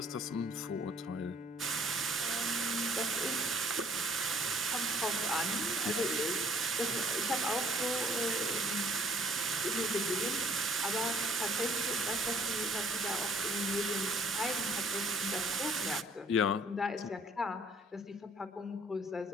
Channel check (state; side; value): normal; both; correlation 0.59